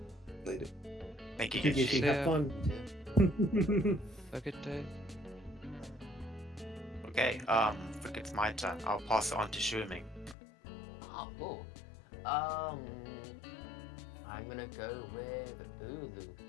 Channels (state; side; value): drops out; right; at 10.4 s